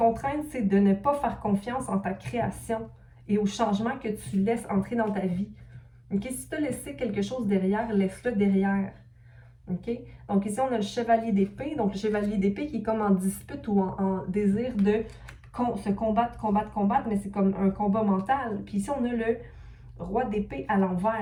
c'est de ne pas faire confiance en ta création et au changement que tu laisses entrer dans ta vie. OK? Si tu as laissé quelque chose derrière, laisse-le derrière. OK? Donc, ici, on a le chevalier d'épée. Donc, le chevalier d'épée qui est comme en dispute ou en désir de se combattre, mais c'est comme un combat mental. Puis ici, on a le roi d'épée à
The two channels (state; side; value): identical; both; correlation 1.00